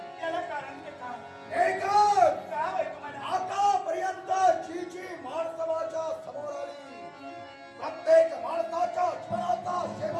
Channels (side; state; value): both; identical; correlation 1.00